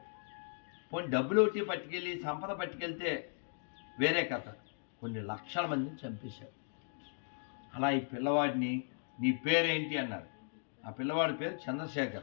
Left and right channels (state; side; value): silent; right; digital silence